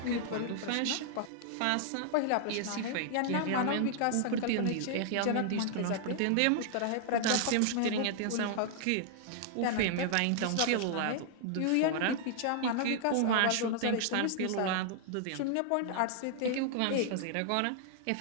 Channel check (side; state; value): both; different; correlation -0.01